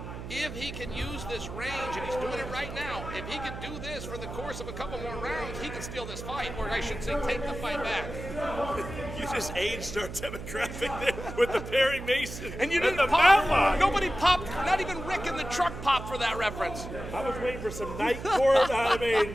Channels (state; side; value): noise; right; hum, 9 dB below the sound